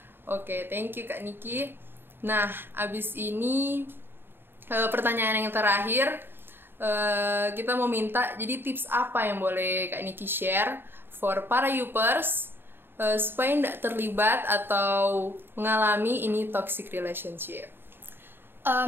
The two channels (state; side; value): late; left; 0.10 ms